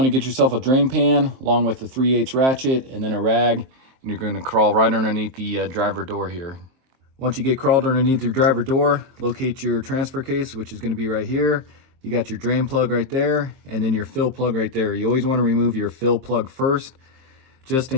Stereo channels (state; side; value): late; left; 23 ms